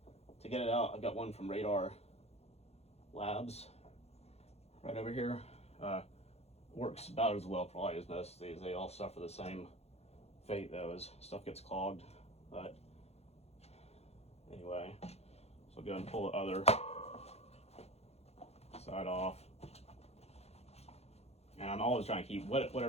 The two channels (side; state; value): right; late; 0.30 ms